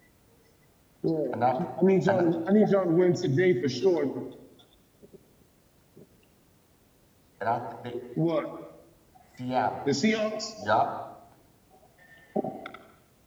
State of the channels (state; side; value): identical; both; correlation 1.00